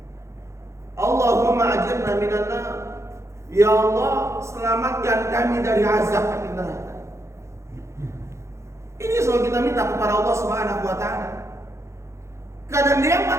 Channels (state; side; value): late; left; 0.14 ms